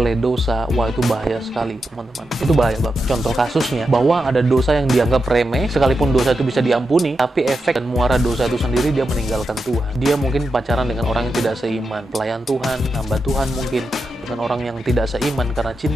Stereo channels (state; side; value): normal; both; correlation 0.88